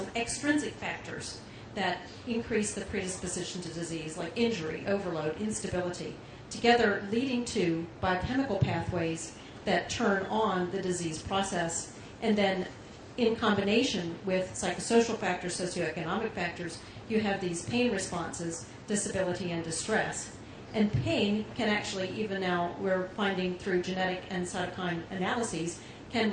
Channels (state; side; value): identical; both; correlation 1.00